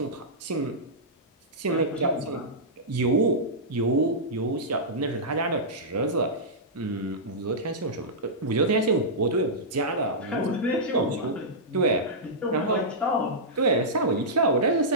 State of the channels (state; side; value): normal; both; correlation -0.13